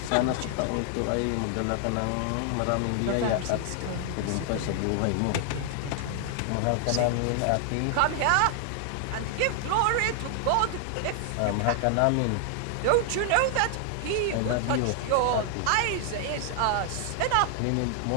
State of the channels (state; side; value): different; both; correlation 0.00